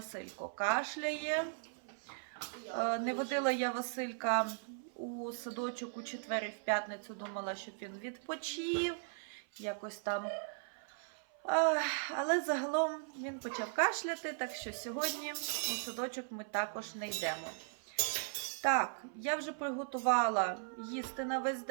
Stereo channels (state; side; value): silent; left; 52 dB below the other